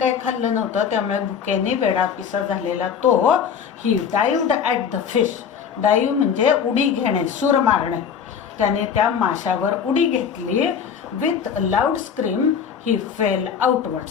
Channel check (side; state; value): right; quieter; 7.4 dB